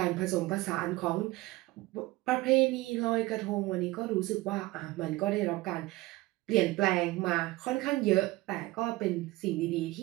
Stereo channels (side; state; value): left; quieter; 19.6 dB